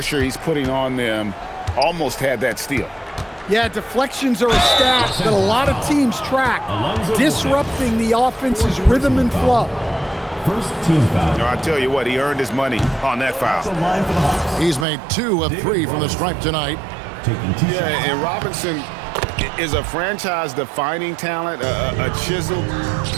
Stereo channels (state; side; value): drops out; left; at 14.9 s